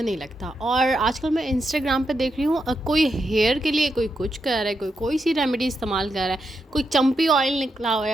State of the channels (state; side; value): normal; both; correlation 0.84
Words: नहीं लगता। और आजकल मैं इंस्टाग्राम पे देख रही हूँ, कोई हेयर के लिए कोई कुछ कर रहा है, कोई कोई सी रेमेडी इस्तेमाल कर रहा है, कोई चंपी ऑयल निकला हुआ